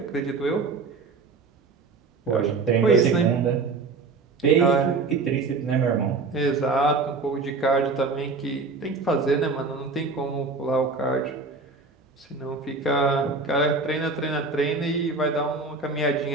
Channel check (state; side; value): quieter; left; 4.1 dB